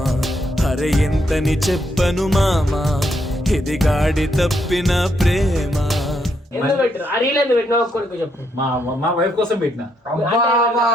అరే ఎంతని చెప్పను మామా, ఇది గాడి తప్పిన ప్రేమ. మా వైఫ్ కోసం పెట్టిన.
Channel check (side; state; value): both; normal; correlation 0.76